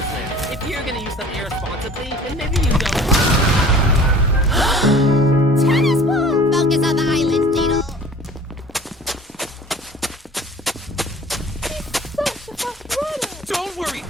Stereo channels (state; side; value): normal; both; correlation 0.46